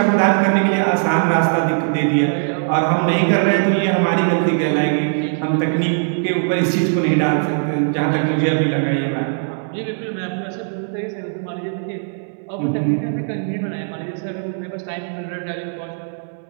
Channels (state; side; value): silent; left; digital silence